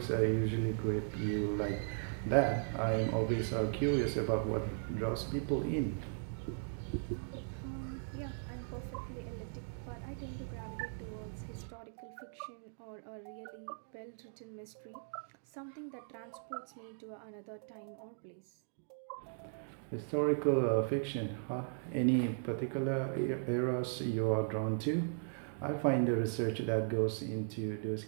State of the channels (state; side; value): silent; left; digital silence